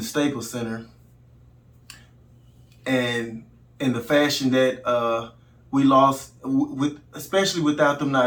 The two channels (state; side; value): identical; both; correlation 1.00